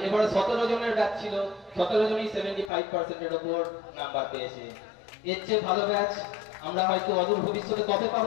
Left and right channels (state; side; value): drops out; right; at 2.7 s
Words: এবারে 17 জনের ব্যাচ ছিল, 17 জনই 75% এর উপর নাম্বার পেয়েছে। এর চেয়ে ভালো ব্যাচ আমরা হয়তো অদূর ভবিষ্যতে কবে